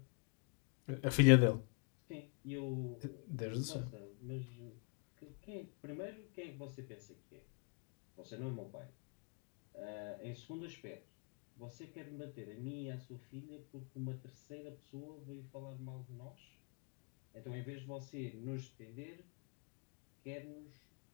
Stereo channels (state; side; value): quieter; right; 37.6 dB